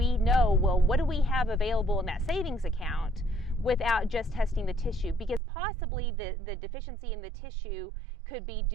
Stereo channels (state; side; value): drops out; left; at 5.4 s